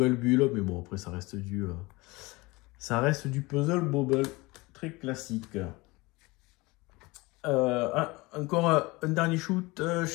bulles, mais bon, après, ça reste du puzzle bobble, très classique. Encore un dernier shoot,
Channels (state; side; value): quieter; right; 23.2 dB